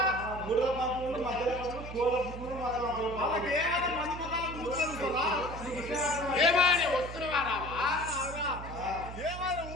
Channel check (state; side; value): noise; right; hum, 10 dB below the sound